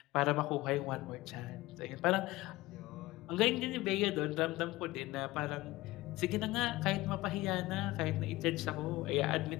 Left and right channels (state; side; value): quieter; right; 18.9 dB